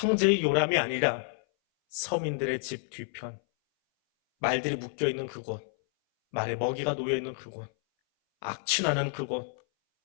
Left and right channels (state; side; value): silent; right; 57 dB below the other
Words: 요람이 아니라 서민들의 집 뒤편, 말들이 묶여있는 그곳, 말에 먹이가 놓여있는 그곳, 악취나는 그곳,